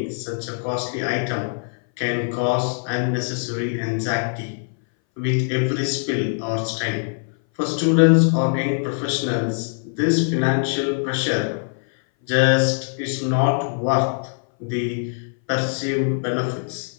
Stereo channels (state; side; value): silent; right; 60 dB below the other